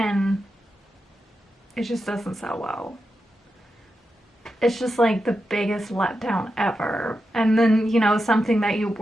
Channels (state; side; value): normal; both; correlation 0.88